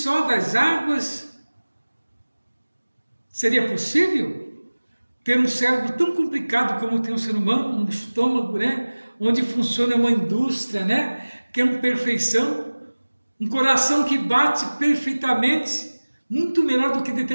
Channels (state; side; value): inverted; both; correlation -1.00